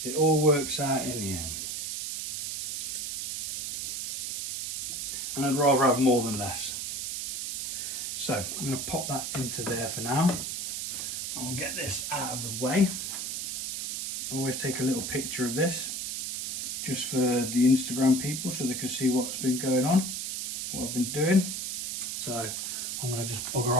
It all works out in the end. And I'd rather have more than less. So I'm going to pop that into there for now. I'll get this out of the way. I always take a little picture of this just for the Instagram people so they can see what's been going on, what I've been doing. So I'm going to just bugger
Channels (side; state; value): right; noise; hiss, 3 dB below the sound